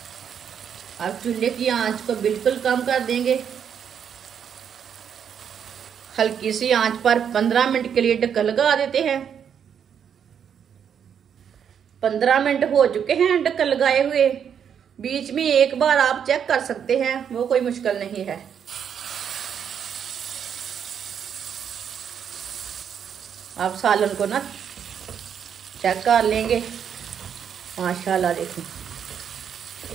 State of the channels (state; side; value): quieter; left; 8.0 dB